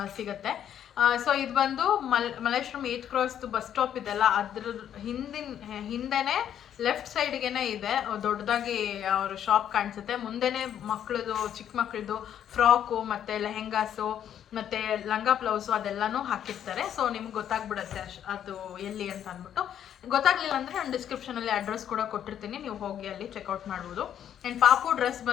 ಸಿಗುತ್ತೆ. ಸೊ ಇದು ಬಂದು ಮಲ್ಲೇಶ್ವರಂ 8th ಕ್ರಾಸ್ದು ಬಸ್ ಸ್ಟಾಪ್ ಇದೆಲ್ಲ, ಅದ್ರ ಹಿಂದೆನೇ ಲೆಫ್ಟ್ ಸೈಡ್ಗೆನೆ ಇದೆ ದೊಡ್ಡದಾಗಿ ಅವ್ರ ಶಾಪ್ ಕಾಣಿಸುತ್ತೆ. ಮುಂದೆನೇ ಮಕ್ಕಳದು, ಚಿಕ್ಕ ಮಕ್ಕಳದು ಫ್ರಾಕು ಮತ್ತು ಲೆಹೆಂಗಾಸು ಮತ್ತು ಲಂಗ ಬ್ಲೌಸು ಅದೆಲ್ಲನೂ ಹಾಕಿರ್ತಾರೆ. ಸೊ ನಿಮ್ಗೆ ಗೊತ್ತಾಗ್ಬಿಡುತ್ತೆ ಅದು ಎಲ್ಲಿ ಅಂತ ಅಂದ್ಬಿಟ್ಟು. ಗೊತ್ತಾಗಲಿಲ್ಲ ಅಂದರೆ ನಾನು ಡಿಸ್ಕ್ರಿಪ್ಷನಲ್ಲಿ ಅಡ್ರೆಸ್ ಕೂಡ ಕೊಟ್ಟಿರ್ತೀನಿ, ನೀವು ಹೋಗಿ ಅಲ್ಲಿ ಚೆಕ್ಔಟ್ ಮಾಡ್ಬೋದು. ಆ್ಯಂಡ್ ಪಾಪು ಡ್ರೆಸ್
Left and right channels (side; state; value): right; quieter; 9.9 dB